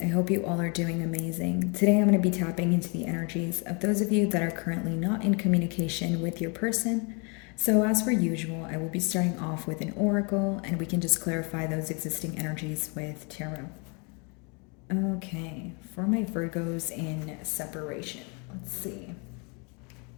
I hope you all are doing amazing. Today I'm going to be tapping into the energies of those of you that are currently not in communication with your person. So, as per usual, I will be starting off with an oracle and we can just clarify those existing energies with tarot. Okay, for my Virgos in separation, let's see.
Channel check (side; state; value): right; quieter; 33.1 dB